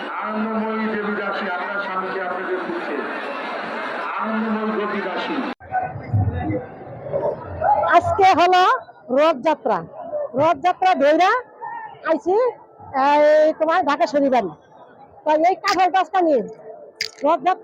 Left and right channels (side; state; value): both; identical; correlation 1.00